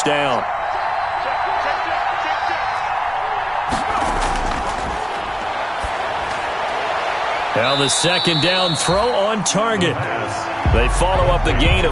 down. Now the 2nd down throw on target. They follow up the gain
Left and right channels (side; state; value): both; identical; correlation 1.00